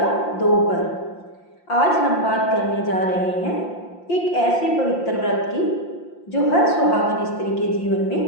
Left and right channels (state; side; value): late; right; 5.7 ms